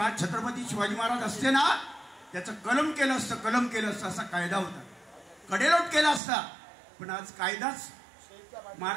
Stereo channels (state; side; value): drops out; left; at 6.2 s